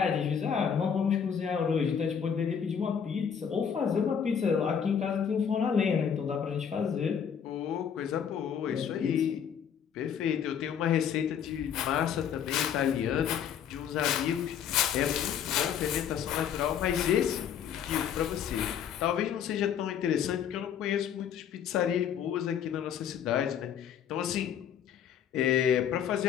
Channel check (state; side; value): quieter; right; 8.1 dB